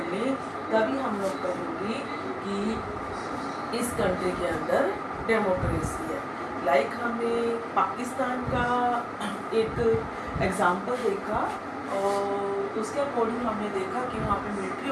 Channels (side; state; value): both; identical; correlation 1.00